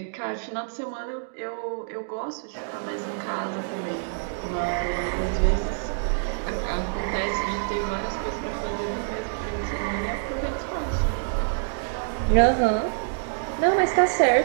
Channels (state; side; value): silent; left; digital silence